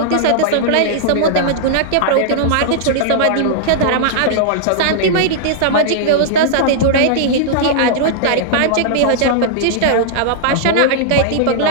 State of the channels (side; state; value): both; different; correlation -0.01